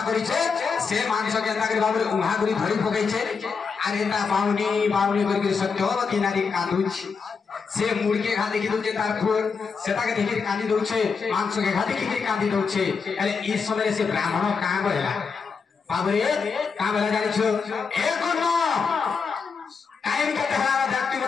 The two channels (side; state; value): right; quieter; 5.4 dB